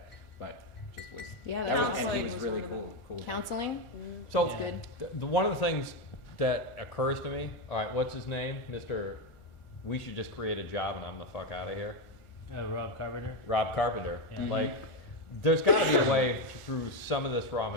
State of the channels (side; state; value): right; late; 1.4 ms